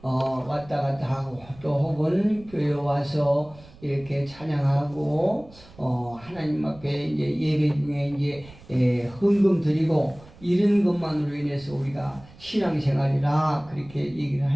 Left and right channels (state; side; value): noise; right; rumble, 22 dB below the sound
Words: 왔다 갔다 하고 또 혹은 교회에 와서 이렇게 찬양하고 하나님 앞에 이제 예배 중에 이제 헌금 드리고 이런 것만으로 인해서 우리가 신앙생활이라 그렇게 얘기를